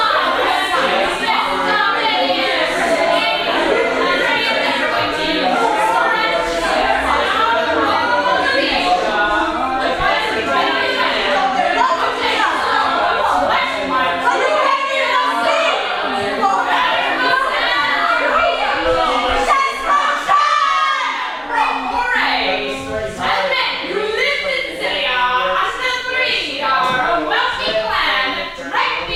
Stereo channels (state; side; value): identical; both; correlation 1.00